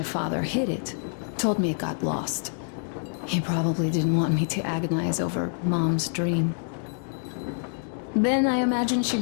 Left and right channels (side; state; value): right; silent; 61 dB below the other